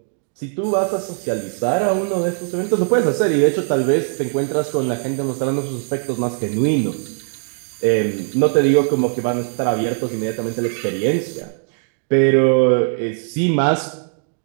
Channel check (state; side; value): silent; left; 66 dB below the other